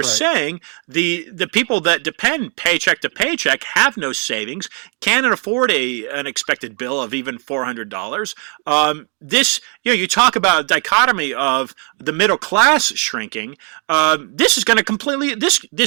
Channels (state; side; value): quieter; left; 39.6 dB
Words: saying, the people that depend paycheck to paycheck have no savings, can't afford an expected bill of even $400. This, you talk about a dichotomy of the middle class shrinking. This is going to completely.